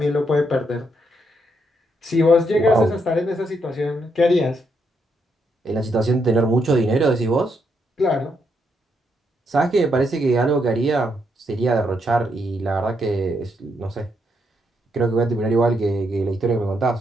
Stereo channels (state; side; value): normal; both; correlation 0.78